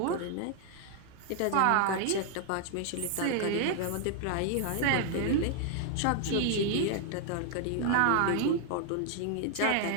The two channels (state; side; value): different; both; correlation 0.00